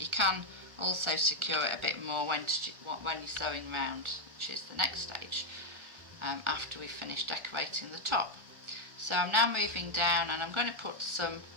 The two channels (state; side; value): late; left; 1.3 ms